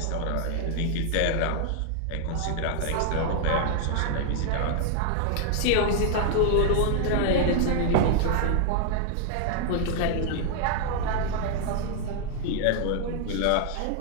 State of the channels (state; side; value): different; both; correlation 0.00